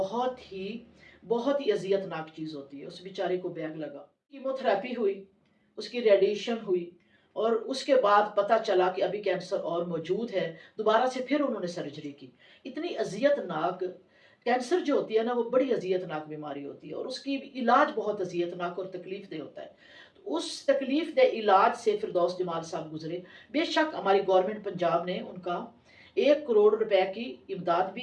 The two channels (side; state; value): both; identical; correlation 1.00